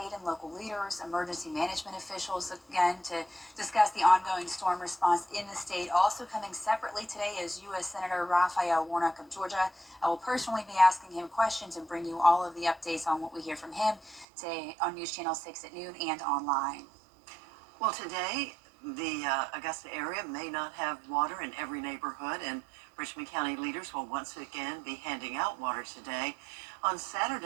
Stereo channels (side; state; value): left; drops out; at 14.2 s